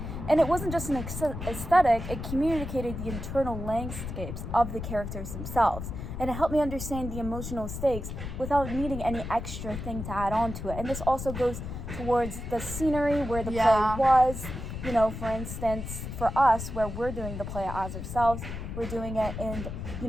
And it wasn't just an aesthetic, it communicated the internal landscapes of the characters themselves. And it helped me understand the emotional stakes without needing any extra thing to add on to it. And this also goes towards the scenery where the play was. For instance, for us, where we're doing the play as ourselves, we're doing it in,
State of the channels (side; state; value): left; noise; rumble, 7 dB below the sound